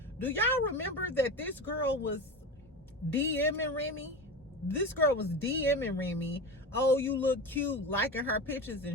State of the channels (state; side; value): normal; both; correlation 0.25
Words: do y'all remember that this girl was DMing Remy? This girl was DMing Remy. Oh, you look cute, liking her pictures